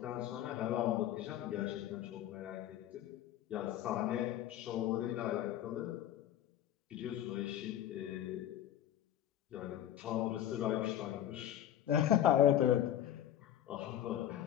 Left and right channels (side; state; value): right; quieter; 11.6 dB